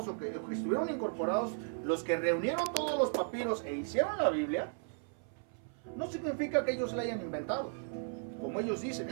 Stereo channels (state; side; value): silent; left; 54 dB below the other